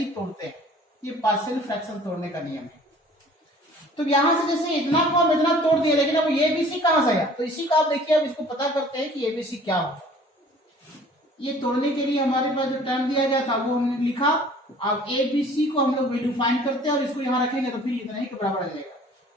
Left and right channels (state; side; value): normal; both; correlation 0.50